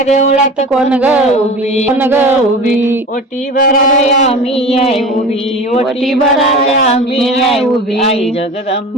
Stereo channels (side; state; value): both; normal; correlation 0.34